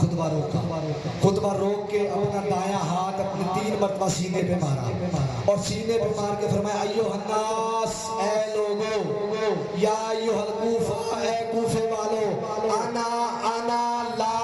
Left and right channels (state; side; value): identical; both; correlation 1.00